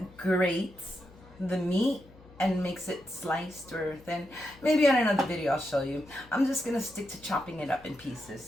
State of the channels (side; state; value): left; noise; hum, 24 dB below the sound